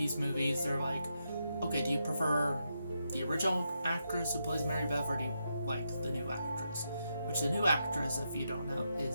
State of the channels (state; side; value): inverted; both; correlation -0.83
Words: they're like, okay, do you prefer the original actress who plays Mary Beth, or do you like the new actress? Which the new actress, if you don't know,